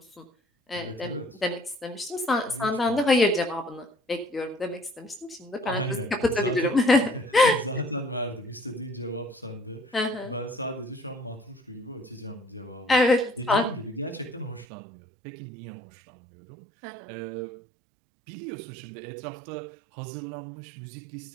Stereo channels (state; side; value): drops out; left; at 14.7 s